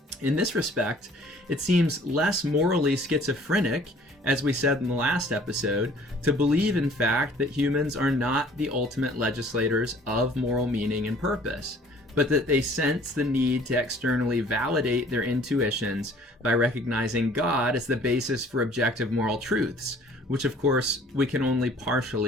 In this respect, it seems less morally schizophrenic, as we said in the last episode, to believe in fact that humans are not the ultimate legislators of moral meaning and purpose. but that they sense the need to externally validate their intuitions by recognizing God as the basis for objective moral truths, which of course we can only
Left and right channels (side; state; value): both; normal; correlation 0.54